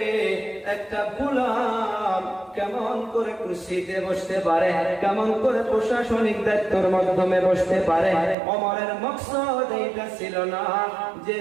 একটা গোলাম কেমন করে কুরসিতে বসতে পারে, কেমন করে প্রশাসনিক দায়িত্বের মাধ্যমে বসতে পারে? ওমরের মকসদ এইটা ছিল না যে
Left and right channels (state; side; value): drops out; left; at 8.3 s